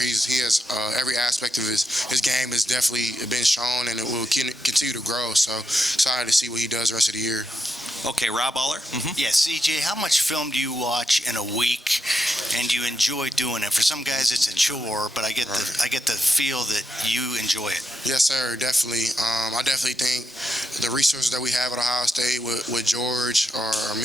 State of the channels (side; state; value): both; normal; correlation 0.85